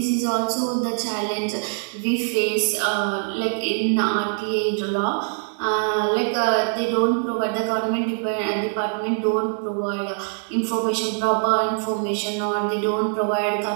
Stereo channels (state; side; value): silent; left; 63 dB below the other